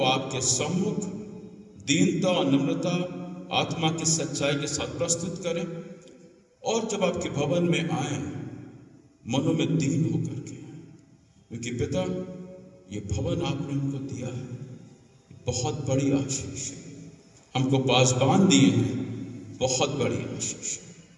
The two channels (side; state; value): both; identical; correlation 1.00